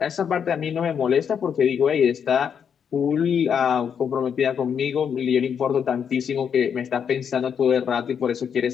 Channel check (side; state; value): right; quieter; 7.5 dB